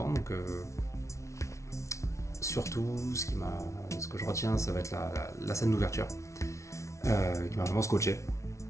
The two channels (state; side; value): late; right; 0.14 ms